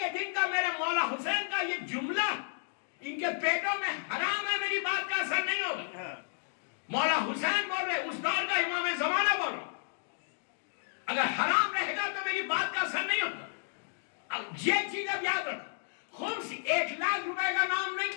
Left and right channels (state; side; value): silent; right; digital silence